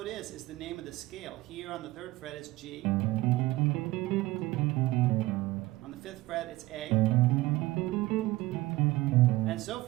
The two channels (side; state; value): left; quieter; 18.6 dB